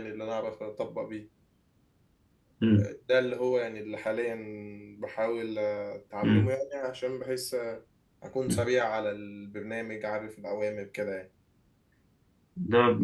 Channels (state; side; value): identical; both; correlation 1.00